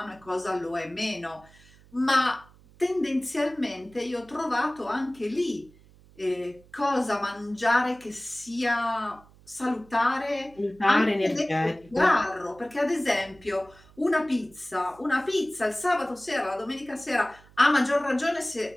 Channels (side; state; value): right; noise; hum, 26 dB below the sound